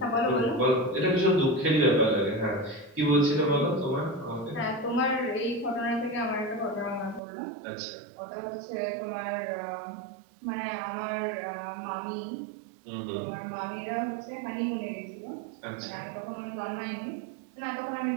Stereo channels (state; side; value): drops out; left; at 7.2 s